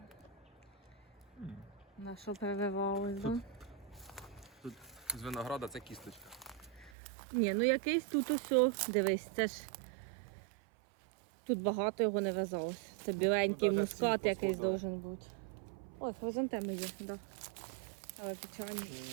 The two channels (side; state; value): left; drops out; at 6.9 s